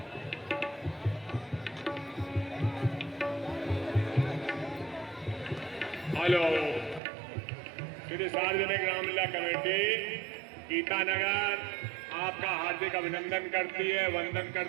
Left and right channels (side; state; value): left; drops out; at 7.0 s